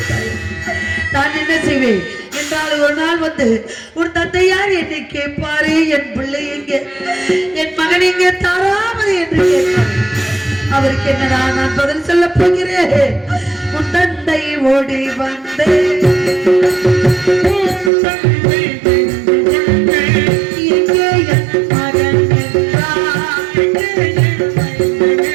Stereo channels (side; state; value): left; drops out; at 17.9 s